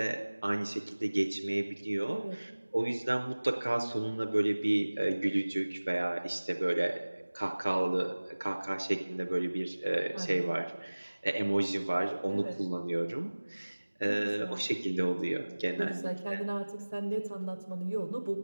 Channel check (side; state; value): both; inverted; correlation -1.00